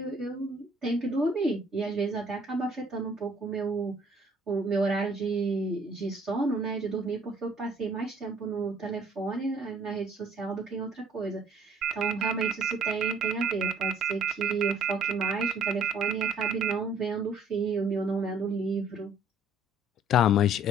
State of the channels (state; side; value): normal; both; correlation 0.57